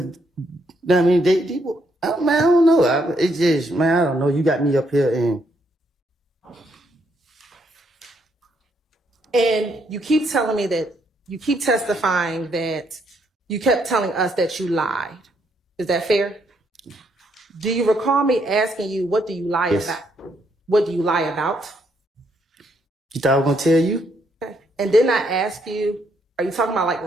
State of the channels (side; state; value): both; normal; correlation 0.74